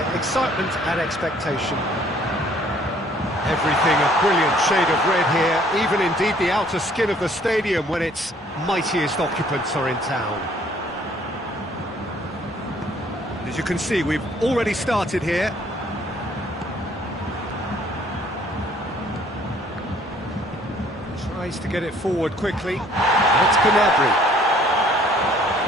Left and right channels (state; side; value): normal; both; correlation 0.59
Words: excitement and expectation. Everything a brilliant shade of red here, even indeed the outer skin of the stadium when its mightiest occupants are in town. As you can see, we've already started here. Tries to get it forward quickly. It's Gnabry.